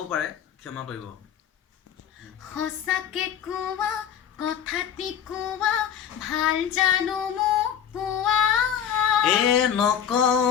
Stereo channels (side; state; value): right; quieter; 8.9 dB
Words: পাৰে, ক্ষমা কৰিব। সঁচাকে কোৱা কথাটি কোৱা ভাল জানো মোক পোৱা